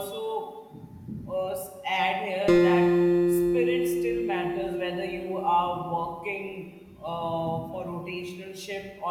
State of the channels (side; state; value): both; identical; correlation 1.00